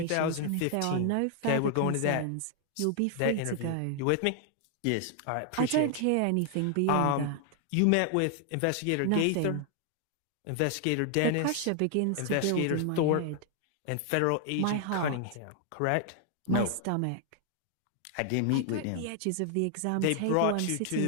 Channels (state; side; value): different; both; correlation 0.00